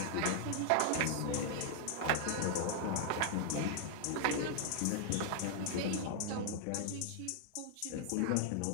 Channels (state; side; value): different; both; correlation 0.00